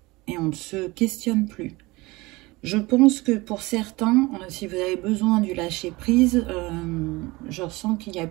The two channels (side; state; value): left; quieter; 22.3 dB